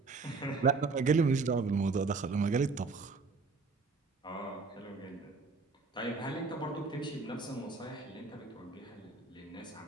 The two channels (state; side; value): quieter; left; 4.2 dB